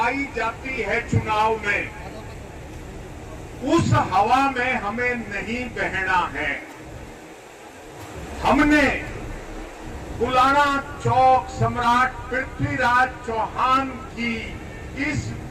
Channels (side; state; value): both; identical; correlation 1.00